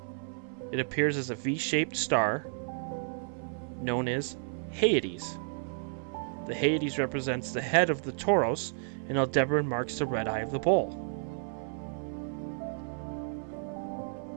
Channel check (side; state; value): left; silent; 57 dB below the other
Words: It appears as a V-shaped star known as Hyades. The Hyades represents the head of the Taurus, and Aldebaran marks the red eye of the Bull.